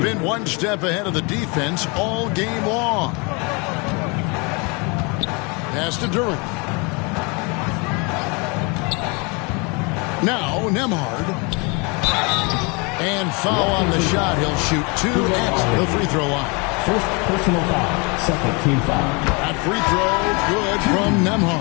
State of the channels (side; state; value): right; quieter; 30.4 dB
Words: one step ahead of the defense all game long. Pass to Duran. Now Nemhard. And foul on the shot. He'll shoot 2 at the free throw line. First personal foul, second team foul. That free throw good from